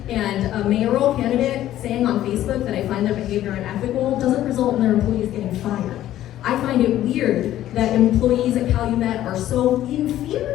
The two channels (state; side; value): quieter; right; 13.1 dB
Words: And a mayoral candidate saying on Facebook that I find their behavior unethical doesn't result in their employees getting fired. I find it weird that employees at Calumet are so in